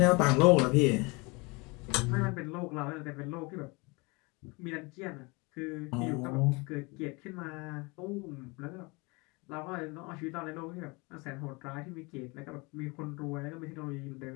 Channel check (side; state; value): right; quieter; 27.2 dB